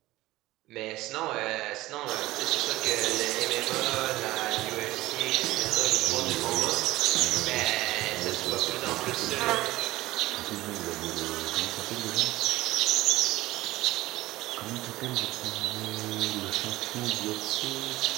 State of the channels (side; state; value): left; quieter; 17.8 dB